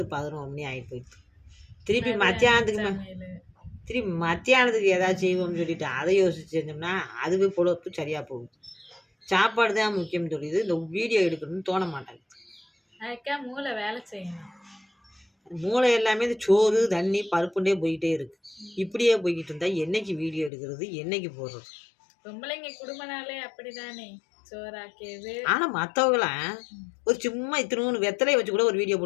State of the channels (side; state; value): right; drops out; at 20.5 s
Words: மணி ஆகிட்டு போயிடுது. திருப்பி மத்தியானத்துக்கு ஏதாவது செய்வோம்னு சொல்லிட்டு அதை யோசிச்சு செஞ்சோம்னா அதுவே பொழப்பு சரியாக போகுது. சாப்பாடு தான் முக்கியம் சொல்லிது. இந்த வீடியோ எடுக்கணும்னு தோண மாட்டாங்க. அதுக்கா மூளை வேலை செய்யணும். மூளை எல்லாமே இந்த சோறு தண்ணி பருப்புண்டே போய்கிட்டே இருக்கு. இப்படியே போய்கிட்டு இருந்தா என்னைக்கு வீடியோ எடுக்கிறது, என்னைக்கு போடுறது? பொம்பளைங்க குடும்பனாலே அப்படிதானே, சோறாக்கியது. ஆனா மற்றவங்களாம் ஒரு சும்மா இத்தினூன்னு வெத்தலையை வச்சு கூட ஒரு வீடியோ